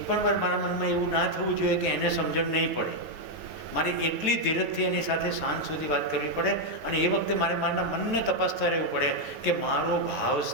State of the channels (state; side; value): late; left; 9.3 ms